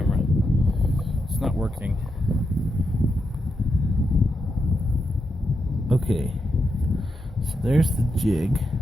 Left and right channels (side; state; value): both; normal; correlation 0.84